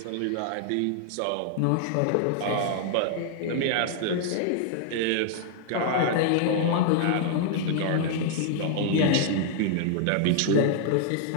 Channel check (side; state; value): both; different; correlation -0.01